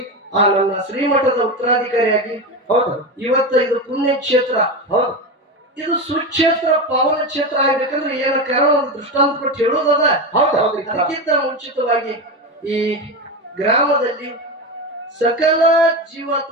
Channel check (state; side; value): normal; both; correlation 0.18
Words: ಆ ನನ್ನ ಶ್ರೀಮಠದ ಉತ್ತರಾಧಿಕಾರಿಯಾಗಿ ಹೌದು ಇವತ್ತು ಇದು ಪುಣ್ಯ ಕ್ಷೇತ್ರ, ಹೌದು ಇದು ಸುಕ್ಷೇತ್ರ ಪಾವನ ಕ್ಷೇತ್ರ ಆಗ್ಬೇಕಂದ್ರೆ ಏನ ಕಾರಣ ಒಂದು ದೃಷ್ಟಾಂತ ಕೊಟ್ಟು ಹೇಳೋದದ. ಹೌದು ಹೌದು ಅದಕ್ಕಿಂತ ಮುಂಚಿತವಾಗಿ ಈ ಗ್ರಾಮದಲ್ಲಿ ಸಕಲ